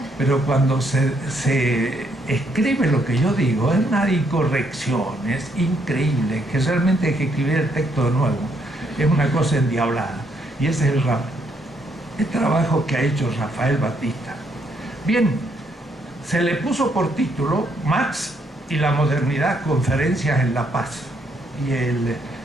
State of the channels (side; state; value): both; normal; correlation 0.73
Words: pero cuando se escribe lo que yo digo, es una incorrección, es increíble, que realmente hay que escribir el texto de nuevo, es una cosa endiablada. Y ese es el trabajo que ha hecho Rafael Batista. Bien, se le puso por título Marx y la modernidad, conferencias en La Paz. Y